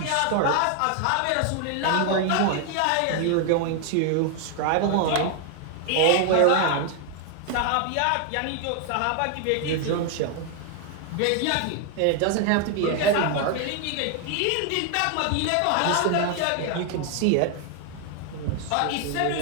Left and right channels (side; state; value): both; different; correlation 0.00